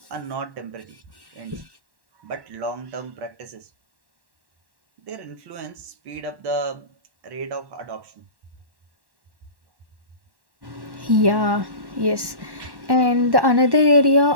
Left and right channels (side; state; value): left; late; 1.1 ms